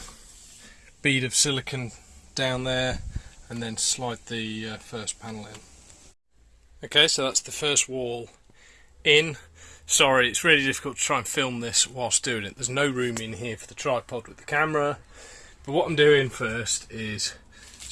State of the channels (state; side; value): identical; both; correlation 1.00